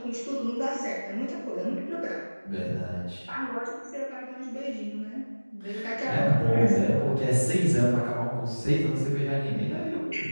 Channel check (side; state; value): both; inverted; correlation -1.00